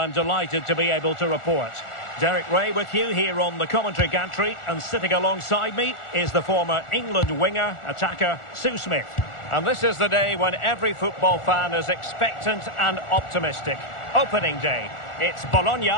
delighted to be able to report. Derek Ray with you here on the commentary gantry, and sitting alongside me is the former England winger, attacker, Sue Smith. And this is the day when every football fan is expectant and optimistic. Opening day. It's Bologna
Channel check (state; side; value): late; right; 1.4 ms